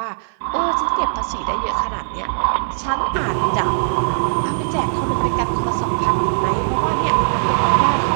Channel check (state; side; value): silent; left; digital silence